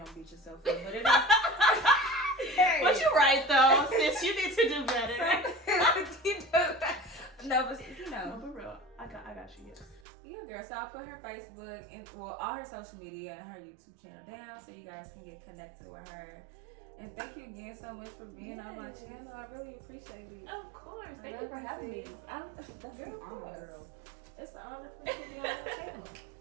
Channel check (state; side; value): drops out; left; at 10.0 s